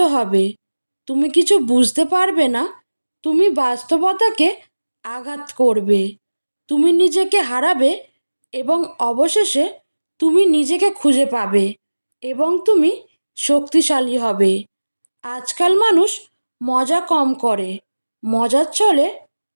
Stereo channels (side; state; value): both; inverted; correlation -1.00